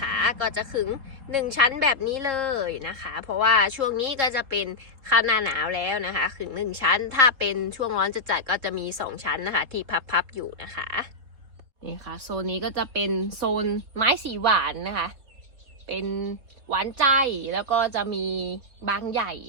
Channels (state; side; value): late; left; 3.8 ms